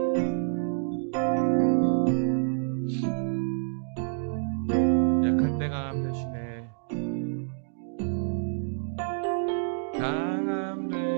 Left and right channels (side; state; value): left; silent; digital silence